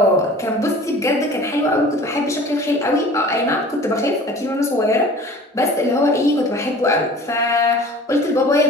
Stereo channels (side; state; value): both; normal; correlation 0.44